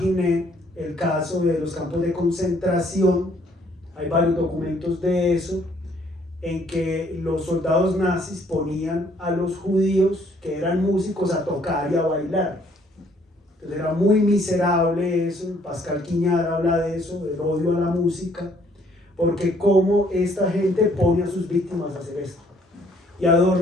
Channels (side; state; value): both; normal; correlation 0.64